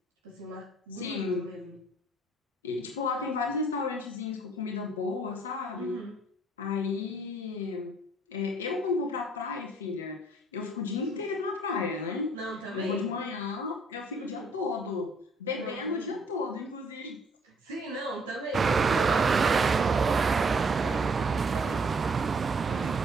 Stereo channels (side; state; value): both; normal; correlation 0.61